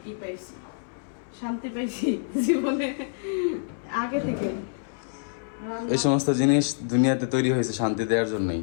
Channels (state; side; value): silent; right; 60 dB below the other